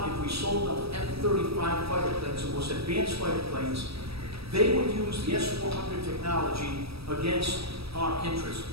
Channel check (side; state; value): left; late; 0.77 ms